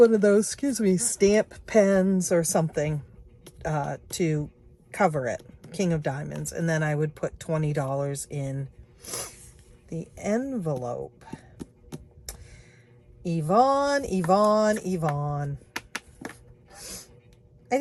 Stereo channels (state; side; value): identical; both; correlation 1.00